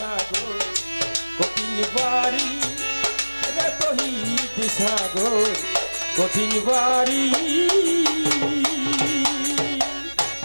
কঠিন পারি রে তহিদ সাগর কঠিন পারি।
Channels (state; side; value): inverted; both; correlation -1.00